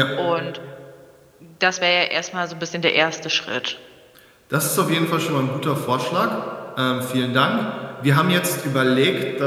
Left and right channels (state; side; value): identical; both; correlation 1.00